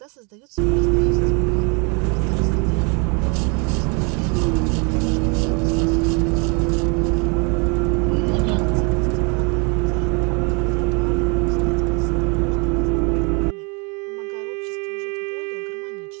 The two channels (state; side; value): quieter; left; 33.2 dB